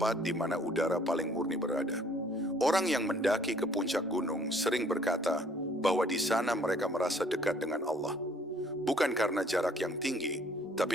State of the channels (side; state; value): both; normal; correlation 0.59